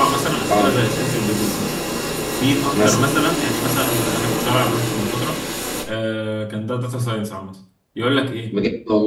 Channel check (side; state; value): both; identical; correlation 1.00